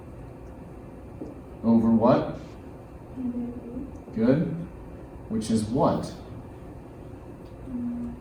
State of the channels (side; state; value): both; identical; correlation 1.00